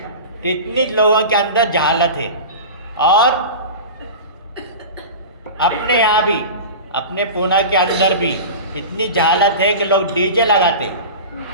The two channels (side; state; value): both; inverted; correlation -0.31